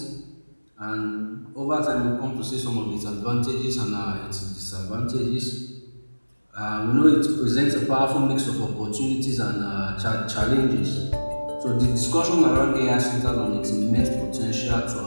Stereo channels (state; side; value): inverted; both; correlation -1.00